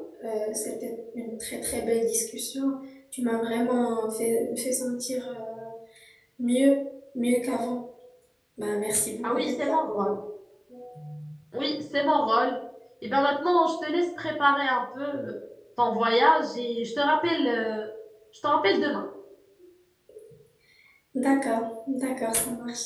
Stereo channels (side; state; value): both; identical; correlation 1.00